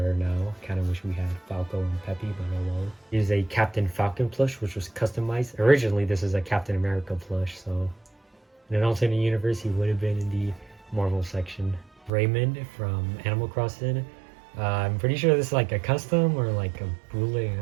now. Kind of wish we had Falco and Peppy, but oh well. Here's a Captain Falcon plush, which was customized. Originally, this is a Captain America plush, so in an alternate universe, he would have been in the Marvel section. Raymond from Animal Crossing. I'm pretty sure this is like a custom or like a bootleg, I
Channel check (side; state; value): left; drops out; at 12.1 s